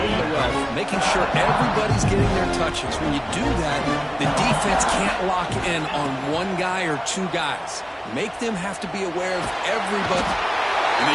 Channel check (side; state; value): both; identical; correlation 1.00